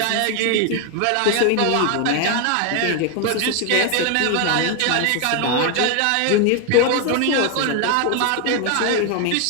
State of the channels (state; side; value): different; both; correlation 0.01